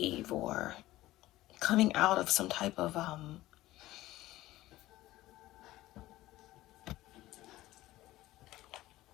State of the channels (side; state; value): right; quieter; 16.5 dB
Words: or coming out of some type of